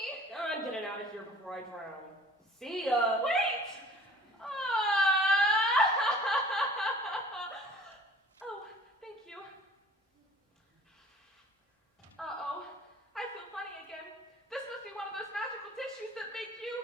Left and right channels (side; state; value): both; normal; correlation 0.48